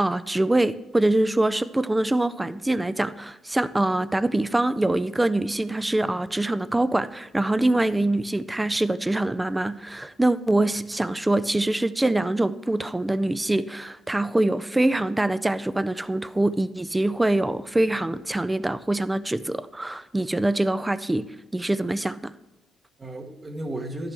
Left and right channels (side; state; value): both; normal; correlation 0.98